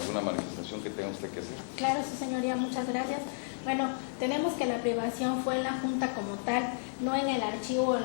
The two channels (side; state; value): right; silent; digital silence